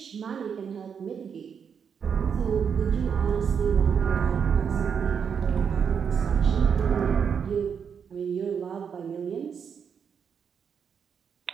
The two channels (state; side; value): quieter; left; 7.0 dB